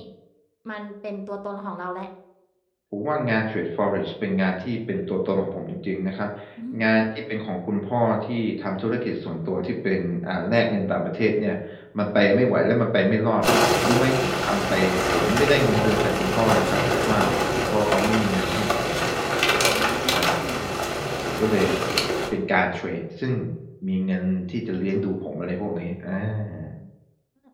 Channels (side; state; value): both; identical; correlation 1.00